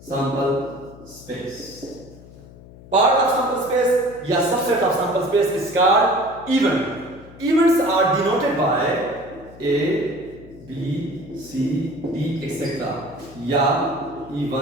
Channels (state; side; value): noise; left; hum, 20 dB below the sound